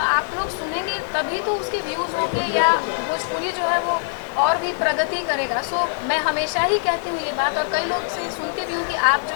आप लोग सुनेंगे, तभी तो उसके व्यूज़ होंगे, या भोजपुरी जो है वो और भी प्रगति करेगा। सो मैं हमेशा ही कहती हूँ ये बात, और कई लोग से सुनती भी हूँ कि आप जो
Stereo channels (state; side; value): silent; right; digital silence